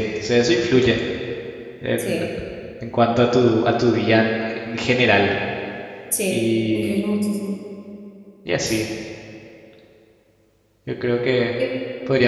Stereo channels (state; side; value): identical; both; correlation 1.00